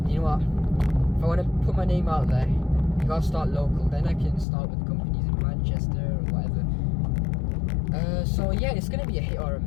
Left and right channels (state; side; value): drops out; right; at 4.5 s